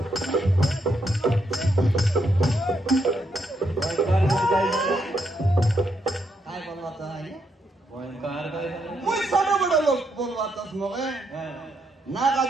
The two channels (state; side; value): normal; both; correlation 0.78